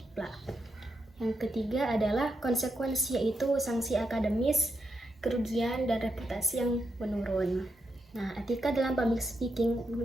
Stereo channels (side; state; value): both; normal; correlation 0.83